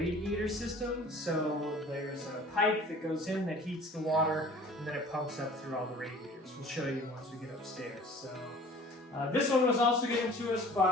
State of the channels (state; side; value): normal; both; correlation 0.47